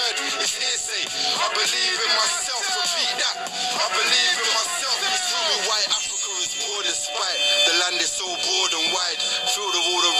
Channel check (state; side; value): identical; both; correlation 1.00